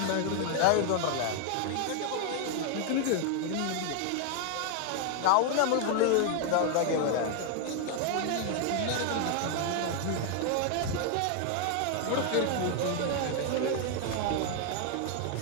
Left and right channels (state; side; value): different; both; correlation 0.00